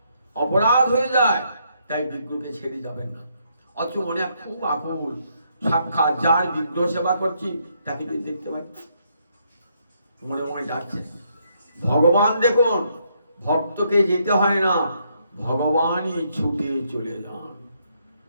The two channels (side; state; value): both; inverted; correlation -0.73